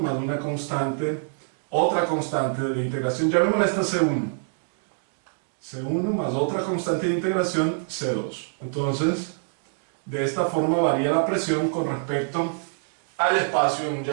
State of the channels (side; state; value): left; silent; digital silence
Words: una constante, otra constante de integración, llamémosla esta C1. C1 más otra constante de integración, C2. Entonces, de esta forma varía la presión con respecto al espacio en un